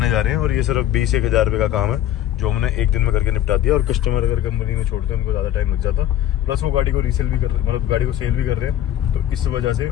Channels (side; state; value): right; quieter; 11.6 dB